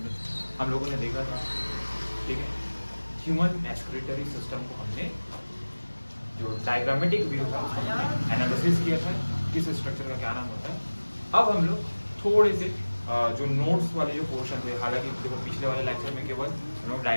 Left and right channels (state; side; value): inverted; both; correlation -1.00